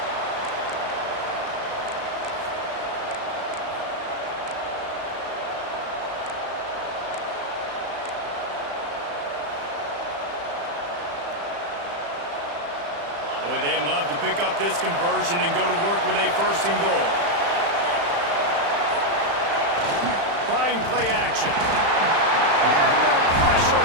Boy, they'd love to pick up this conversion and go to work with a first and goal. Trying play action. And the pressure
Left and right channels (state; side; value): late; left; 35 ms